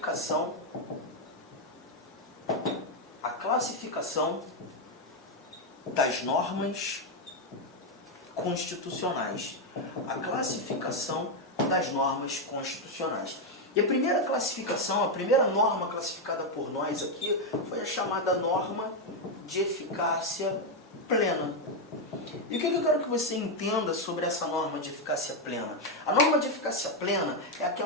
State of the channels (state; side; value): normal; both; correlation 0.04